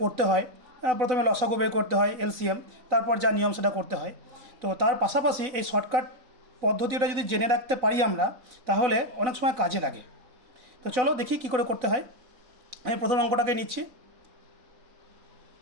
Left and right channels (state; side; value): late; left; 4.0 ms